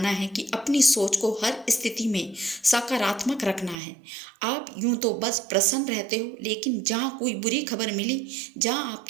है कि अपनी सोच को हर स्थिति में सकारात्मक रखना है। आप यूं तो बस प्रसन्न रहते हो, लेकिन जहाँ कोई बुरी खबर मिली, जहाँ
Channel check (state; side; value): drops out; left; at 3.8 s